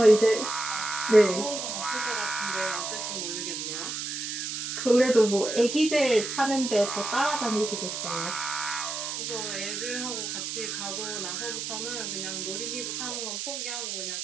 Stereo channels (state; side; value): noise; right; hiss, 4 dB below the sound